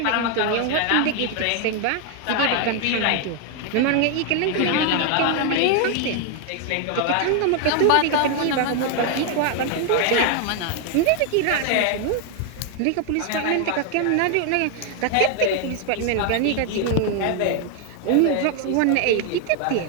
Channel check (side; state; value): both; different; correlation 0.00